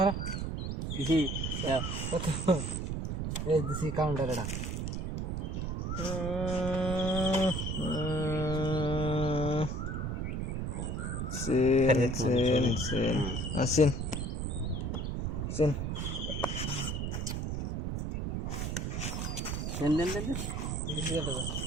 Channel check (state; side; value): noise; right; rumble, 2 dB below the sound